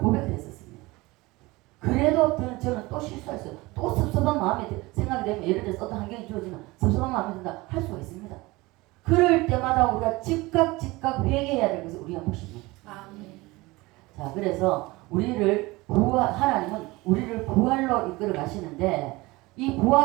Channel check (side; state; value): left; quieter; 21.7 dB